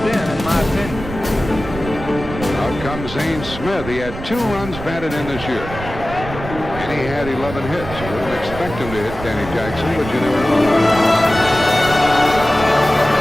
then, in my opinion. Out comes Zane Smith. He had 2 runs batted in this year. And he had 11 hits. You wouldn't expect him to hit Danny Jackson, but you never know.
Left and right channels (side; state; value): right; noise; rumble, 11 dB below the sound